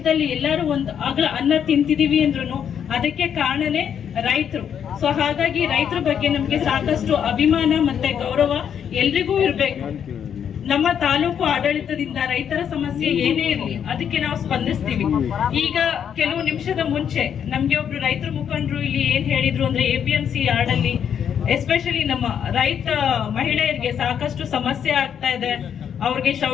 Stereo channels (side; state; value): right; quieter; 8.4 dB